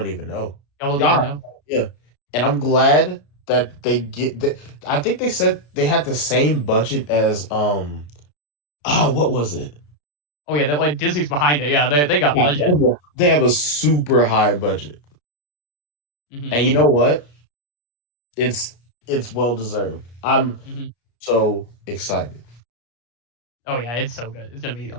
even know. Y'all don't even know. Yeah. And I'm glad that they get that. I think they said they had the same budget as what was it? Oh yeah, that like Disney's behind it. Yeah, they got budget. They have a super high budget. And you know what? It's well deserved. I'm so excited. Oh yeah, it's so good. It's gonna be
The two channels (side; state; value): right; late; 34 ms